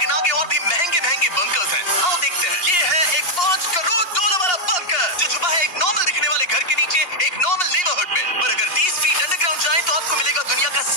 आगे और भी महंगे बंकर्स हैं। आओ देखते हैं। ये है एक $5 करोड़ वाला बंकर जो छुपा है एक नॉर्मल दिखने वाले घर के नीचे एक नॉर्मल नेबरहुड में। पर अगर 30 फीट अंडरग्राउंड जाए तो आपको मिलेगा दुनिया का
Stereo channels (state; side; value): late; right; 2.8 ms